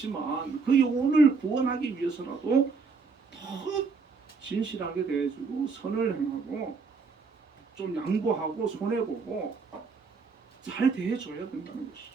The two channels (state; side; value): quieter; left; 4.7 dB